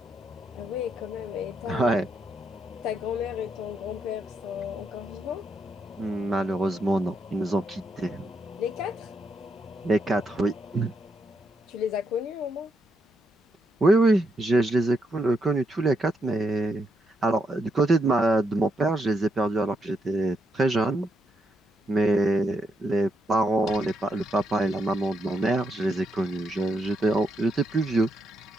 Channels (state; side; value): normal; both; correlation 0.79